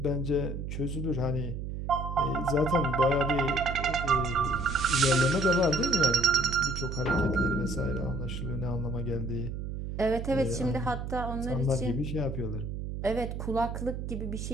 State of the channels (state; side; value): noise; right; hum, 5 dB below the sound